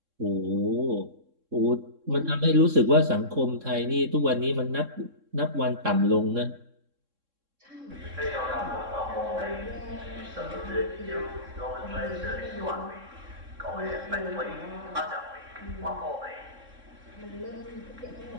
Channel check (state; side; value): late; left; 3.6 ms